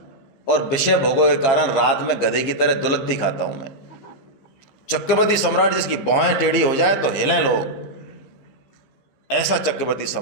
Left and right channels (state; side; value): late; right; 15 ms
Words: और विषय भोगों के कारण रात में गधे की तरह दुलत्ती खाता हूं। मैं चक्रवर्ती सम्राट जिसकी भौहें टेढ़ी हो जाए तो हिलें लोग, ऐसा चक्रवर्ती